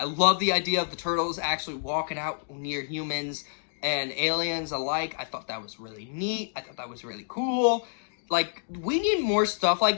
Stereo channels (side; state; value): right; silent; digital silence